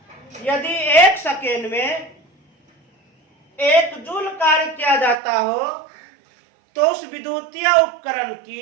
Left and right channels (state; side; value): drops out; left; at 5.2 s